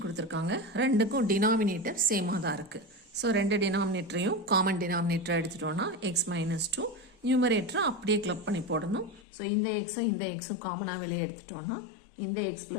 கொடுத்துருக்காங்க, ரெண்டுக்கும் டினாமினேட்டர் சேமாக தான் இருக்குது. ஸோ ரெண்டு டினாமினேட்டரையும் காமன் டினாமினேட்டரை எடுத்துட்டோன்னா எக்ஸ் மைனஸ் 2, நியூமரேட்டரை அப்படியே கிளப் பண்ணி போடணும். ஸோ இந்த எக்ஸும் காமனாக வெளியே எடுத்துட்டோன்னா இந்த எக்ஸ்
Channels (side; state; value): right; drops out; at 9.2 s